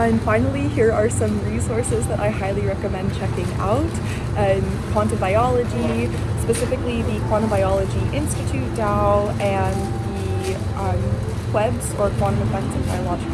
finally, here are some resources that I highly recommend checking out. Quantum biology, specifically the Quantum Biology Institute DAO and the QEBS, or Quantum Effects in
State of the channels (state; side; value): identical; both; correlation 1.00